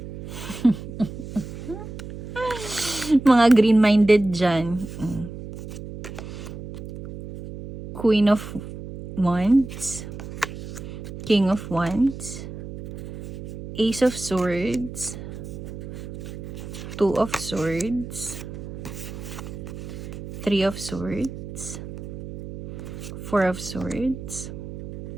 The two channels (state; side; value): noise; right; hum, 10 dB below the sound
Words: Mga green-minded dyan. Queen of Wands, King of Wands, Ace of Swords, 2 of Swords, 3 of Swords, 4 of Swords,